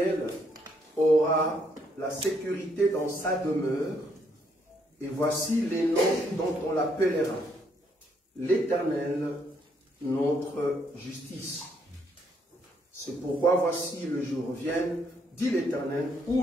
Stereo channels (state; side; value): normal; both; correlation 0.72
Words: aura la sécurité dans sa demeure. Et voici les noms dont on l'appellera. L'Éternel, notre justice. C'est pourquoi voici le jour vienne, dit l'Éternel,